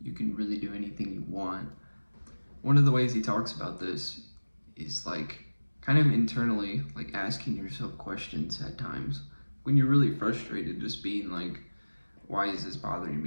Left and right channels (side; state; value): both; inverted; correlation -1.00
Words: can really do anything you want. One of the ways he talks about this is like kind of internally, like asking yourself questions at times when you're really frustrated, just being like, why is this bothering